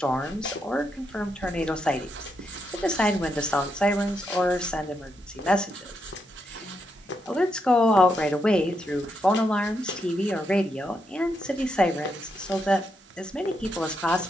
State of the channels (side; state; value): both; normal; correlation 0.81